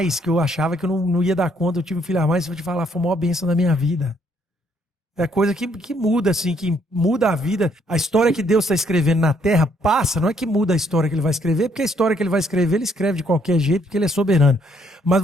que eu achava que eu não ia dar conta. Eu tive um filho a mais, vou te falar, foi a maior bênção da minha vida. É coisa que muda, assim, que muda a vida. A história que Deus está escrevendo na Terra passa, não é que muda a história que ele vai escrever, porque a história que ele vai escrever, ele escreve de qualquer jeito, porque ele é soberano. Mas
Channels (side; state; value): both; normal; correlation 0.68